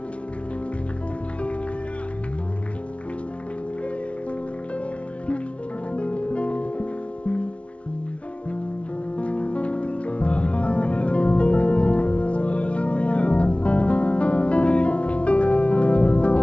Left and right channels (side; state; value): right; late; 0.062 ms